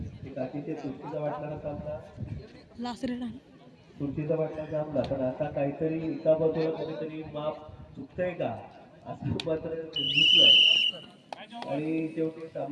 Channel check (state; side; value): identical; both; correlation 1.00